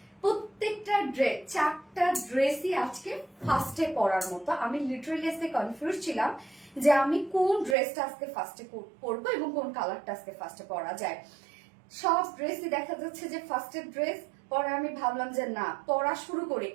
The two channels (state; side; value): drops out; left; at 7.8 s